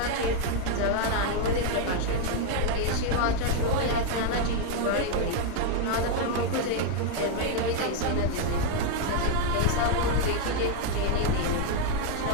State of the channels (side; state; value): both; different; correlation 0.00